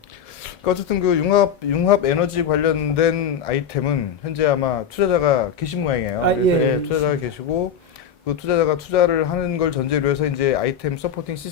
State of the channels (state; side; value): quieter; right; 7.3 dB